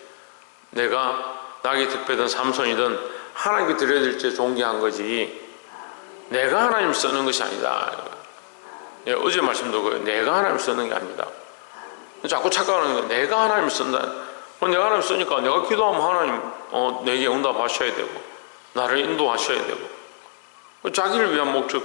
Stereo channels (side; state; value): right; silent; 63 dB below the other